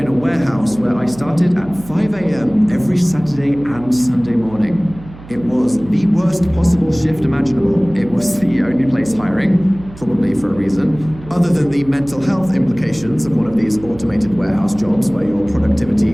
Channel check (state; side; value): noise; right; hum, 18 dB below the sound